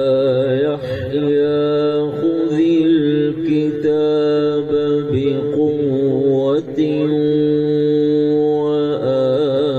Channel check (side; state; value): both; identical; correlation 1.00